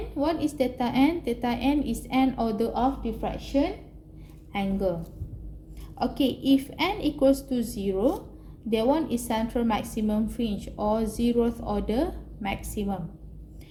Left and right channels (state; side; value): identical; both; correlation 1.00